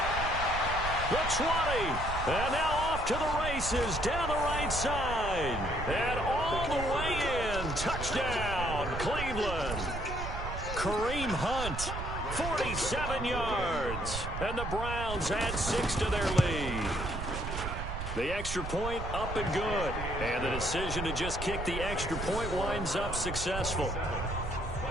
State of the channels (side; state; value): right; noise; rumble, 5 dB below the sound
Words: The 20. And now off to the races down the right side. And all the way in. Touchdown, Cleveland. Kareem Hunt, 47 yards. And the Browns add 6 to their lead. The extra point up and good. And the decision to just kick the extra point winds up successful.